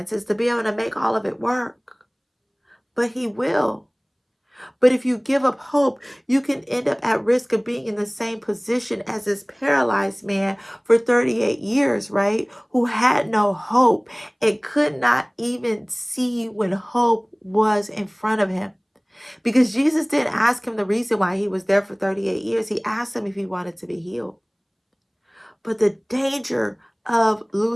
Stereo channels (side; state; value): both; identical; correlation 1.00